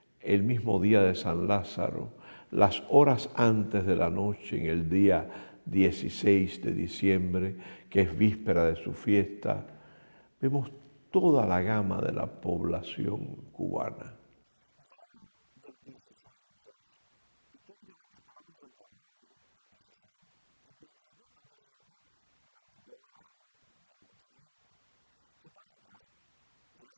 el mismo día de San Lázaro, las horas antes de la noche, en el día 16 de diciembre, que es víspera de su fiesta, vemos toda la gama de la población cubana. El fenómeno del 16, o sea, históricamente estaba concentrado el 16 y el 17, aunque siempre durante todo el año viene mucha gente. ¿Qué pasa? Que de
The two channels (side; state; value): both; inverted; correlation -1.00